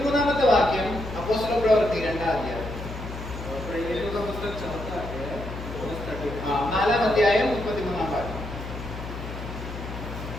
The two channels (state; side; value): noise; left; hum, 9 dB below the sound